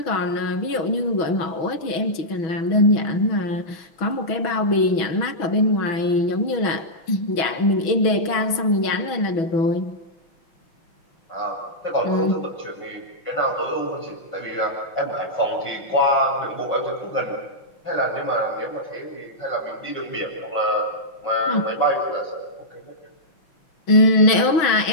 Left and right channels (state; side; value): late; right; 6.1 ms